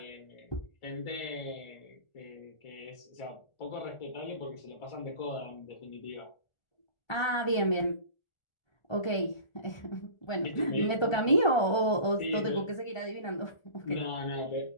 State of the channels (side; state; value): right; late; 1.4 ms